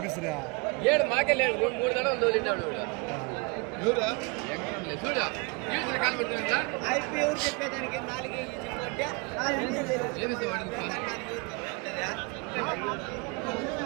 7 మాకే లేదు, 3 దడలు తోలినాడు.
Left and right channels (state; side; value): quieter; left; 30.3 dB